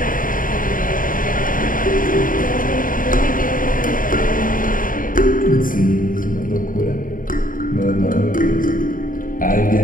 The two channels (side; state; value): right; late; 0.40 ms